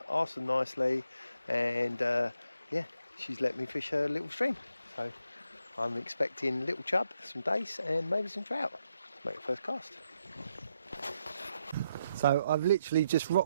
asked them nicely, and yeah, she's let me fish her little stream. So I'm expecting little chub, some dace and maybe some trout to make the first cast. So I've literally just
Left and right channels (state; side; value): inverted; both; correlation -0.80